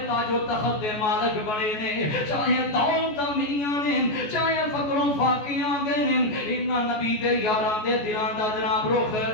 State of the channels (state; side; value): late; right; 14 ms